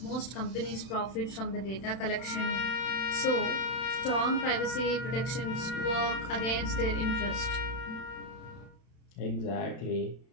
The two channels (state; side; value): late; right; 31 ms